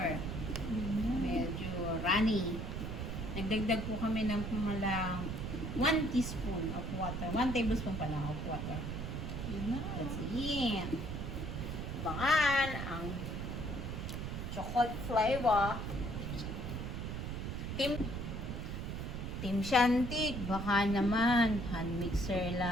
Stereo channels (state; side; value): noise; right; rumble, 4 dB below the sound